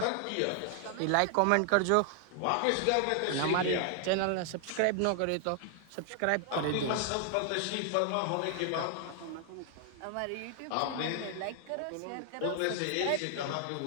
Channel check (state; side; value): different; both; correlation 0.00